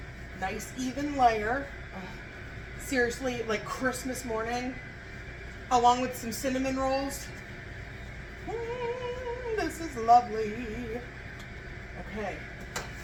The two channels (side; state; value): both; identical; correlation 1.00